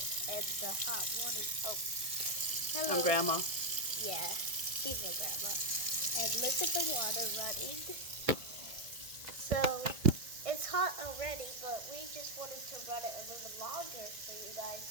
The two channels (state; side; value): late; left; 1.7 ms